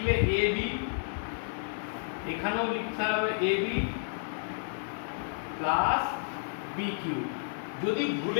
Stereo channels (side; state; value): right; silent; 57 dB below the other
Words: এ বি, এখানেও লিখতে হবে A B plus b cube. যদি